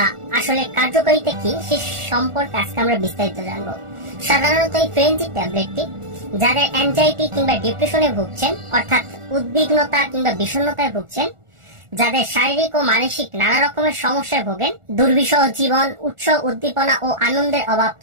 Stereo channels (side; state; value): left; late; 1.4 ms